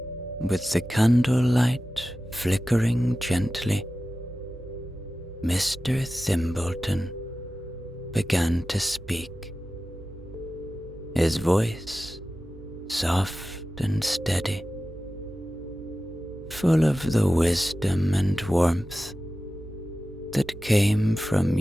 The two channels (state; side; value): normal; both; correlation 0.94